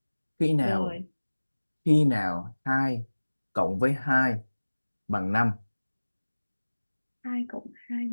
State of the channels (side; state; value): both; inverted; correlation -1.00